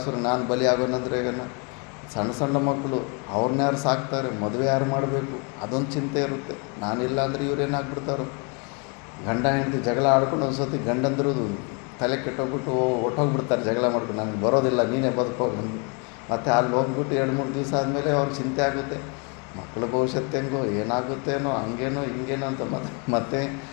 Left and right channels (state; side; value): quieter; right; 33.7 dB